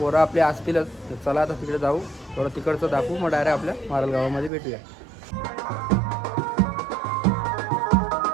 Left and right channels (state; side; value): drops out; left; at 4.5 s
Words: आपले असतीलच. चला आता तिकडे जाऊ, थोडं तिकडचं दाखवू, मग डायरेक्ट आपल्या मारल गावामध्ये भेटूया.